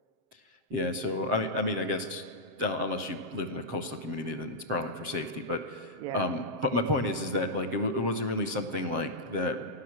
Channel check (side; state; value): left; late; 7.6 ms